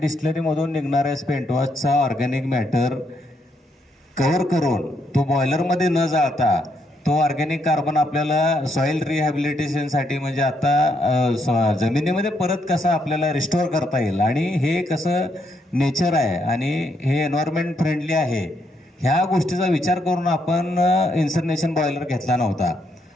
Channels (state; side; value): normal; both; correlation 0.76